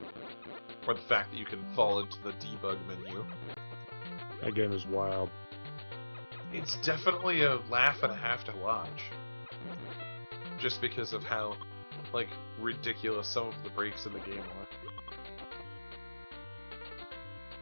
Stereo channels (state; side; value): inverted; both; correlation -1.00